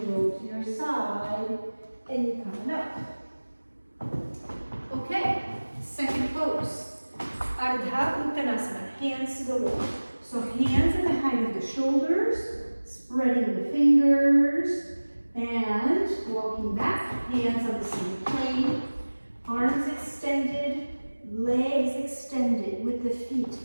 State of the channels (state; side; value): inverted; both; correlation -1.00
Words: roll to your side, and you come up. Okay, second pose. Ardha Uttanāsana, hands to the wall. So hands at the height of the shoulders, spreading the fingers, and walking back, hands on the same plane, arms extended, legs extended with the feet